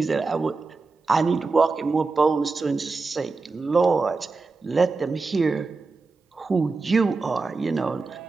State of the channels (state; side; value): quieter; left; 4.0 dB